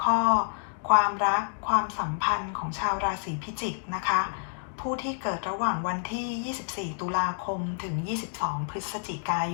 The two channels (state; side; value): silent; right; digital silence